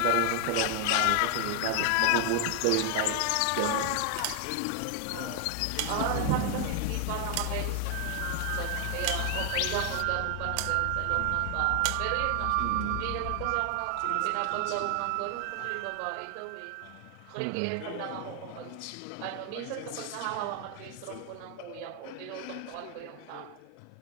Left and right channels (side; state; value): both; different; correlation 0.00